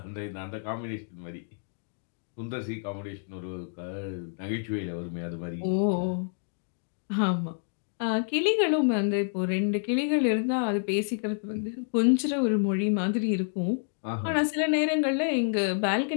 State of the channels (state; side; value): silent; right; digital silence